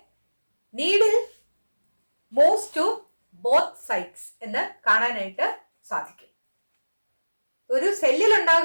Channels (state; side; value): inverted; both; correlation -1.00